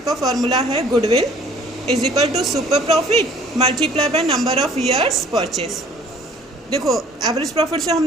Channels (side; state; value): both; normal; correlation 0.54